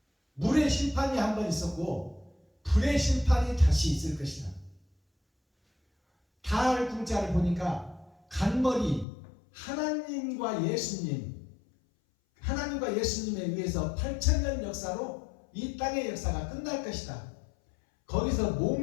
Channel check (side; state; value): right; drops out; at 9.1 s